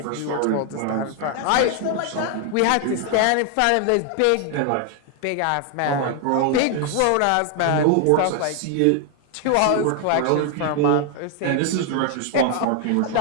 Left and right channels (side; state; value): both; different; correlation 0.00